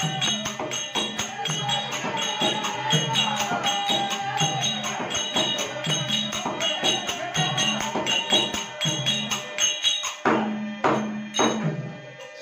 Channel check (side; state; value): both; identical; correlation 1.00